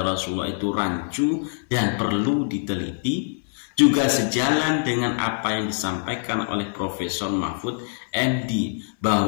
Rasulullah itu rancu dan perlu diteliti. Juga sejalan dengan apa yang disampaikan oleh Profesor Mahfud MD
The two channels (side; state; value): right; silent; 59 dB below the other